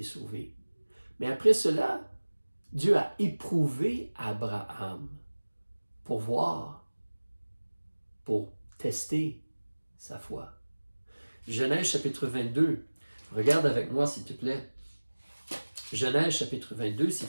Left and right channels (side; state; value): both; inverted; correlation -1.00